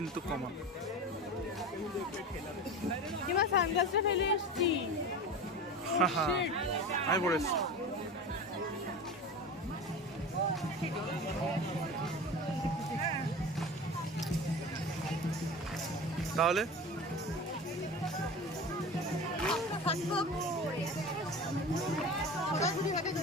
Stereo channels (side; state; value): both; normal; correlation 0.31